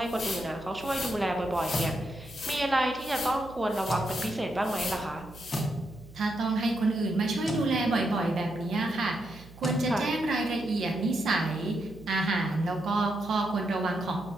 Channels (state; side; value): noise; right; hum, 20 dB below the sound